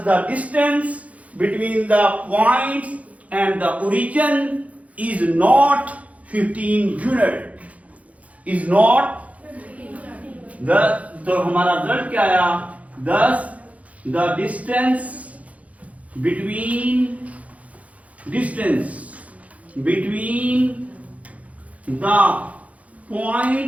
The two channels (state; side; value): late; left; 0.067 ms